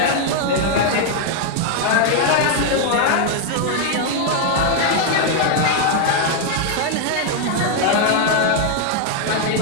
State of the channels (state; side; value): different; both; correlation 0.00